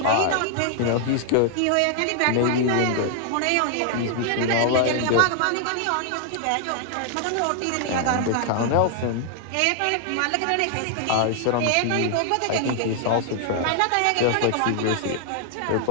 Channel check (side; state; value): both; different; correlation 0.00